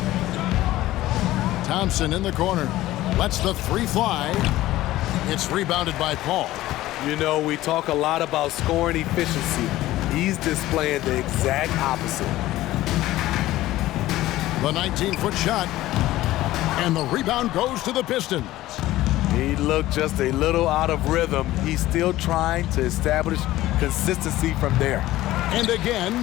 Thompson in the corner. Lets the 3 fly. It's rebounded by Paul. You know, we talk a lot about scoring efficiency. He's displaying the exact opposite. The 19-foot shot. And the rebound goes to the Pistons. He looked just a little out of rhythm. He's still trying to establish consistency from there. And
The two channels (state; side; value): quieter; right; 16.0 dB